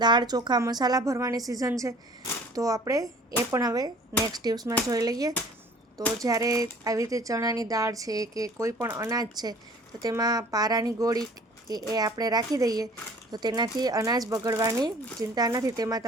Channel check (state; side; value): normal; both; correlation 0.50